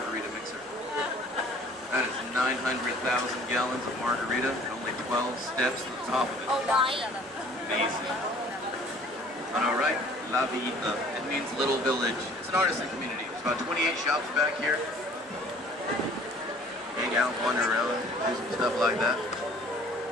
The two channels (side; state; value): both; normal; correlation 0.52